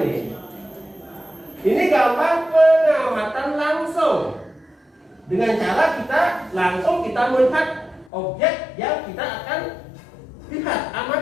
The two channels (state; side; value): drops out; right; at 8.1 s